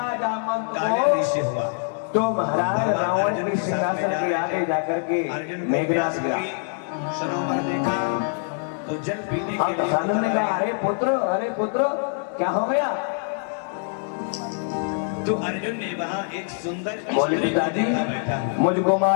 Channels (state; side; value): silent; right; 55 dB below the other